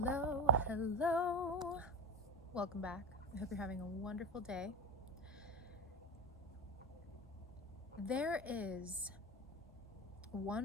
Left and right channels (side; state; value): both; normal; correlation 0.23